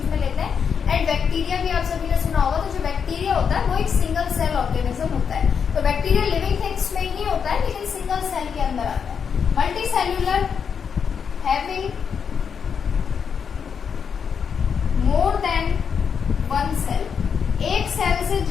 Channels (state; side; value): quieter; right; 6.8 dB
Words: में लेते हैं। एंड बैक्टीरिया भी आप सभी ने सुना होगा। तो जो बैक्टीरिया होता है वो एक सिंगल सेल ऑर्गेनिज्म होता है। तो बैक्टीरिया लिविंग थिंग्स में ही होता है लेकिन सिंगल सेल के अंदर आता है। Multicellular having more than one cell. एक सेल से